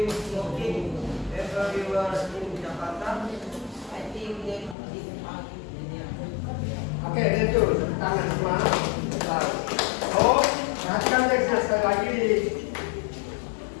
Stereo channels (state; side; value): drops out; right; at 4.8 s